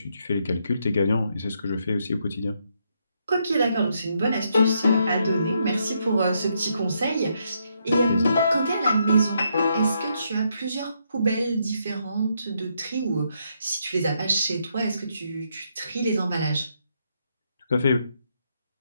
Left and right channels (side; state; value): both; inverted; correlation -0.77